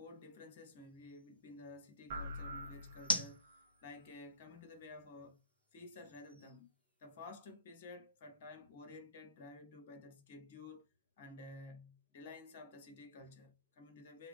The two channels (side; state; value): both; inverted; correlation -0.47